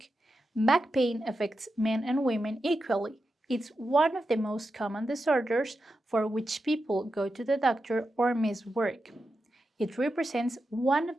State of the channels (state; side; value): normal; both; correlation 0.89